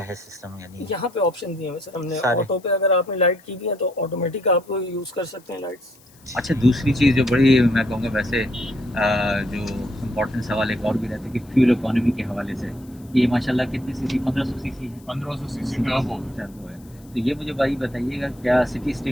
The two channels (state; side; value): noise; left; hiss, 28 dB below the sound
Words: सिस्टम, यानी यहाँ पे ऑप्शन दिए हुए सर हमने। सारे। ऑटो पे अगर आपने लाइट की भी है तो ऑटोमेटिक आप यूज़ कर सकते हैं लाइट्स। अच्छा, दूसरी चीज़ जो बड़ी मैं कहूँगा वैसे जो इम्पोर्टेंट सवाल एक और भी रहता है कि फ्यूल इकोनॉमी के हवाले से, ये माशाल्लाह कितनी सीसी, 1500 सीसी है, 1500 सीसी टर्बो। टर्बो है। तो ये मुझे भाई बताइएगा, क्या सिटी